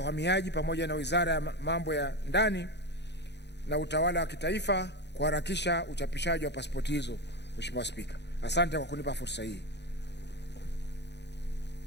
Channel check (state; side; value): late; right; 0.50 ms